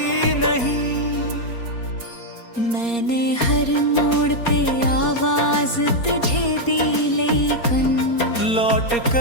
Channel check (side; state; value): right; late; 4.3 ms